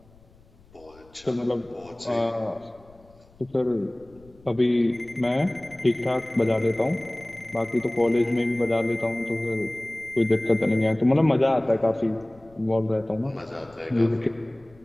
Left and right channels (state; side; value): noise; left; rumble, 27 dB below the sound